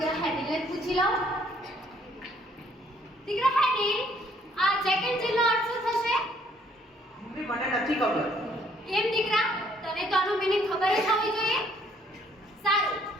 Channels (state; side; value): normal; both; correlation 0.64